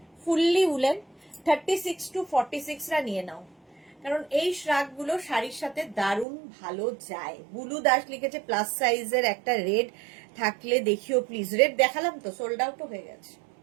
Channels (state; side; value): drops out; left; at 6.2 s